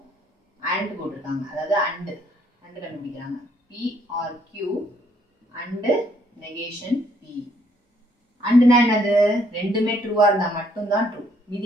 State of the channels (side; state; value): both; normal; correlation 0.67